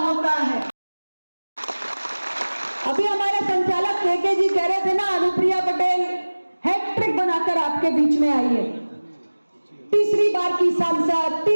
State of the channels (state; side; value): inverted; both; correlation -1.00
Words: है। अभी हमारे संचालक केके जी कह रहे थे ना, अनुप्रिया पटेल हैट्रिक बनाकर आपके बीच में आई है। तीसरी बार की सांसद,